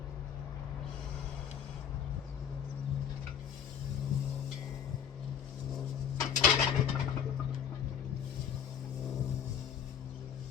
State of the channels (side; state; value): right; quieter; 8.2 dB